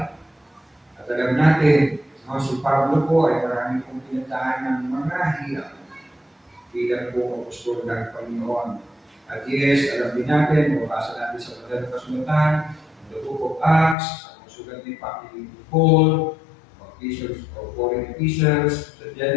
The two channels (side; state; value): right; drops out; at 14.0 s